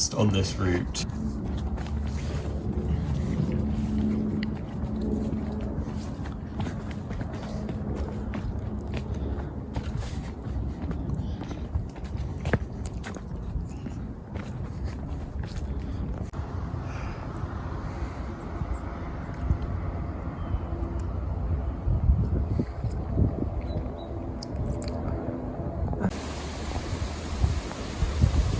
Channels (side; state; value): both; identical; correlation 1.00